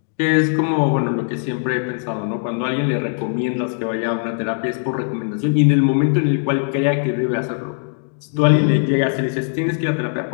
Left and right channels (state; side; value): silent; right; 66 dB below the other